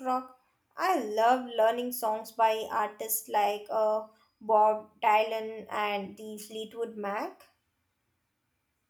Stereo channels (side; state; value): both; identical; correlation 1.00